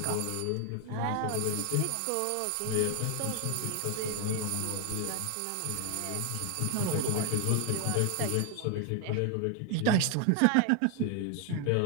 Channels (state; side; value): different; both; correlation 0.00